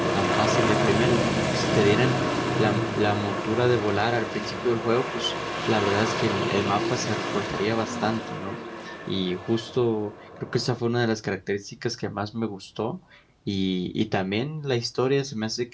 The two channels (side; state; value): both; identical; correlation 1.00